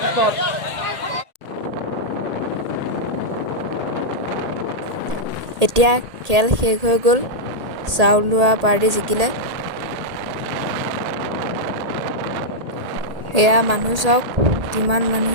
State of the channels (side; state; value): left; late; 1.8 ms